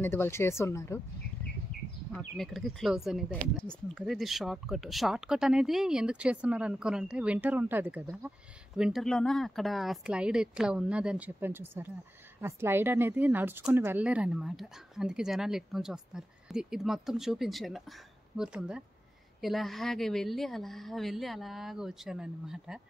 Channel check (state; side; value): normal; both; correlation 0.92